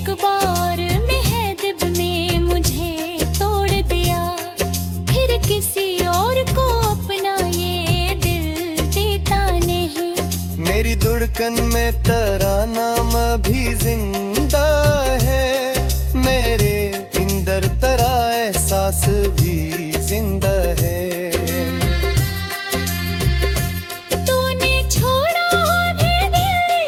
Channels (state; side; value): identical; both; correlation 1.00